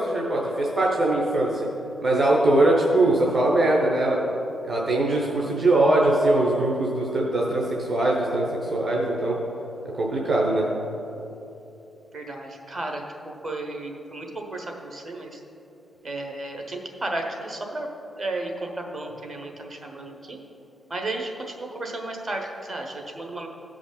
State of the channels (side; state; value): both; normal; correlation 0.80